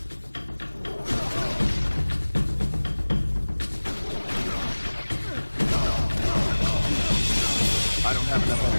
I don't have enough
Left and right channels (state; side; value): inverted; both; correlation -1.00